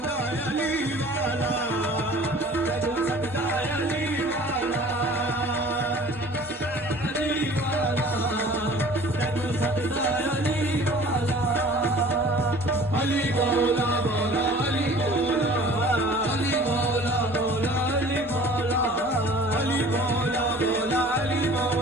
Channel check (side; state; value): both; normal; correlation 0.47